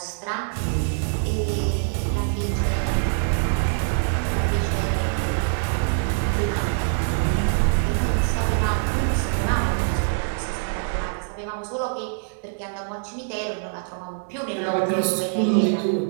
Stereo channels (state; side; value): silent; left; 63 dB below the other